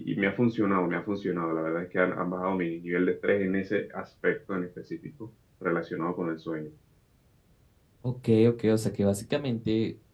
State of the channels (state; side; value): identical; both; correlation 1.00